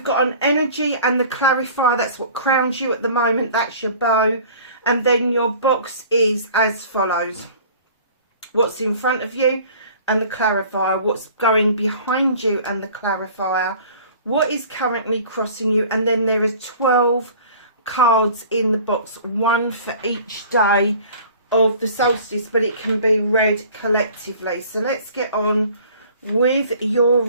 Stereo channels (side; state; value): both; inverted; correlation -0.47